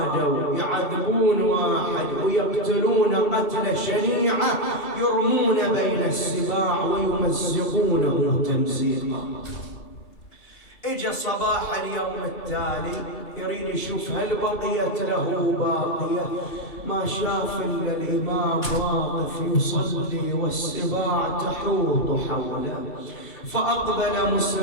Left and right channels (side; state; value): right; late; 2.9 ms